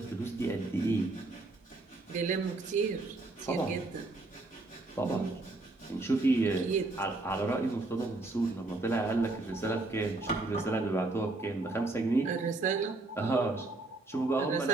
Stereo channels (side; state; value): left; quieter; 3.1 dB